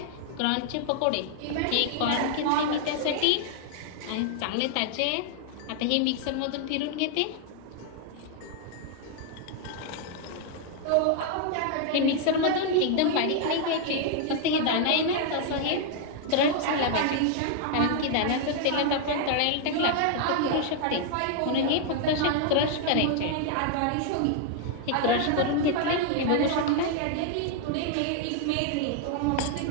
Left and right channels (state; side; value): different; both; correlation 0.00